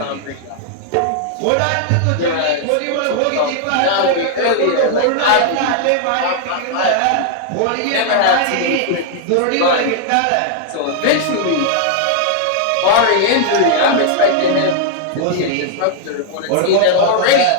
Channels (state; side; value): different; both; correlation -0.01